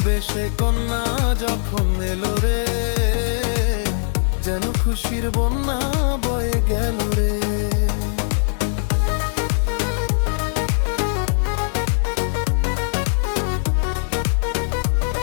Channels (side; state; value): right; silent; digital silence